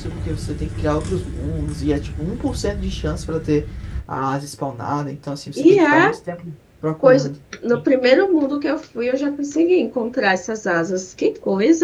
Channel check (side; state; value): both; identical; correlation 1.00